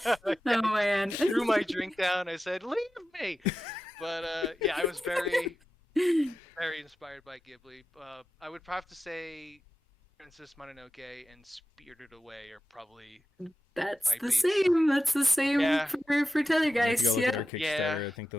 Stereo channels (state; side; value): normal; both; correlation 0.92